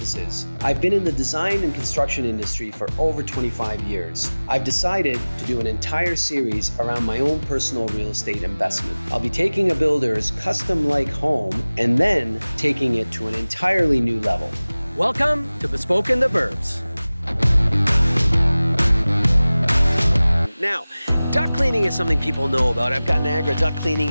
I've been in the design and construction industry for over 25 years. I've decided to do an entire series around my own personal real estate investment. I'll be taking a builder's custom-like home and then taking it to an entirely new level. Welcome to Bespoke in the Burbs. Now, duct cleaning is something people know about. I've got Niagara duct cleaning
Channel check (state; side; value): inverted; both; correlation -0.99